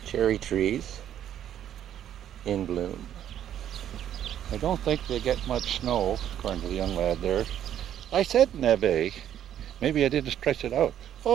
Cherry trees in bloom. I don't think they get much snow, according to the young lad there. I said neve. Maybe I didn't stretch it out.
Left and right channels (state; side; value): quieter; left; 10.5 dB